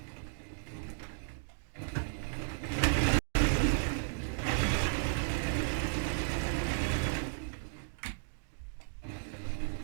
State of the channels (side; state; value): left; silent; digital silence